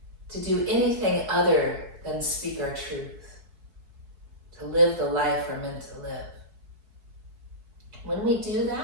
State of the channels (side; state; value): left; late; 4.7 ms